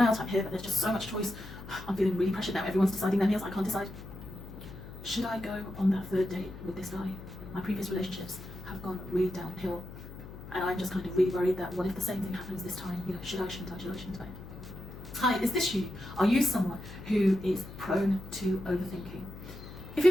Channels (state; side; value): noise; left; hum, 13 dB below the sound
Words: out, I'm here, but there's just so much choice. I'm feeling really pressured now. Everyone's deciding their meals, I can't decide. Should I go on that third date with this guy? My previous relationships have gone really downhill, and I'm just kind of really worried that what if the same thing happens this time? You know, should I, shouldn't I, should I, shouldn't I? Hi, is this you? Are you someone who is prone to overthinking? If